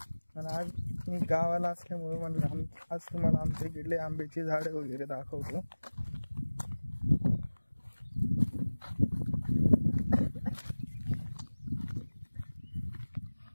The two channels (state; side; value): inverted; both; correlation -1.00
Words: आणि आज मी गावाला असल्यामुळे म्हणलं आज तुम्हाला आमच्या इकडले आंब्याची झाडे वगैरे दाखवतो.